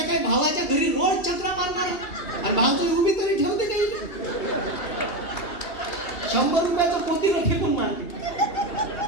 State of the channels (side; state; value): right; late; 2.8 ms